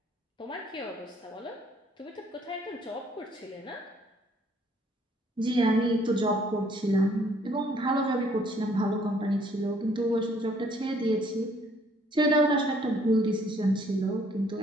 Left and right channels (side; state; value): both; normal; correlation 0.63